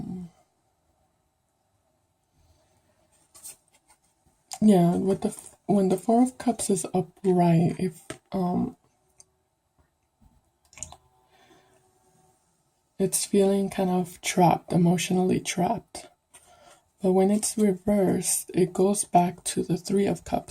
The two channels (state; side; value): identical; both; correlation 1.00